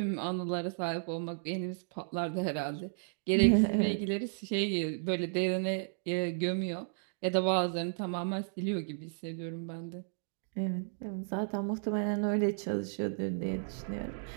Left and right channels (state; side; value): silent; left; digital silence